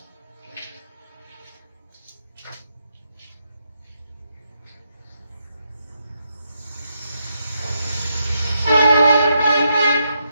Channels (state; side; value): inverted; both; correlation -0.81